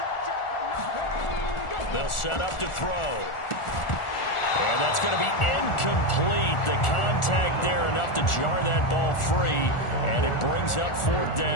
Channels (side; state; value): right; late; 1.4 ms